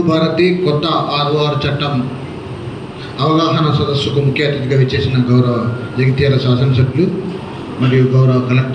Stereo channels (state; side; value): identical; both; correlation 1.00